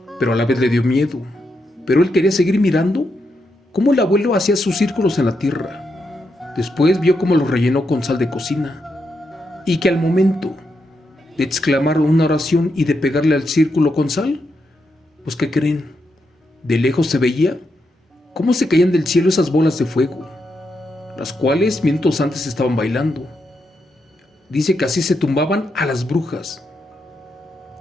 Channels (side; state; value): both; normal; correlation 0.83